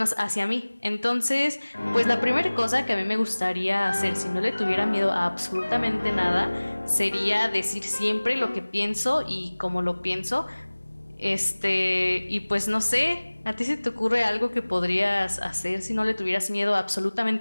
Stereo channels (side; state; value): both; inverted; correlation -1.00